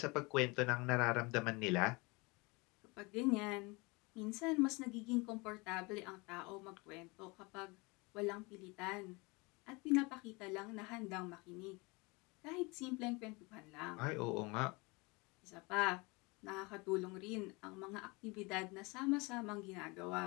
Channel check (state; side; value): quieter; right; 26.6 dB